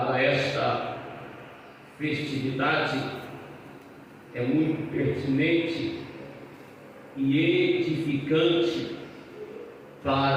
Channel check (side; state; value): both; identical; correlation 1.00